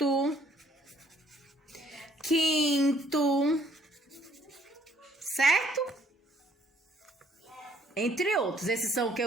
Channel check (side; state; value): both; normal; correlation 0.65